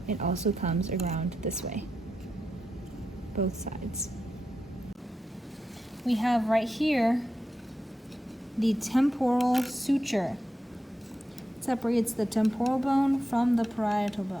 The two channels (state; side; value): normal; both; correlation 0.88